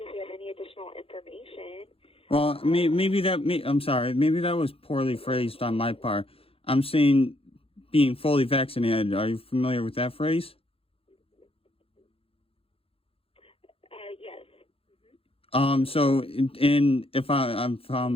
if you have any additional information. Well, I'm sorry. Maybe that was poorly phrased on my part. I'm saying being fully vaccinated. Are you familiar with that phrase? Yes. So, if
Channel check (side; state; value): right; late; 0.27 ms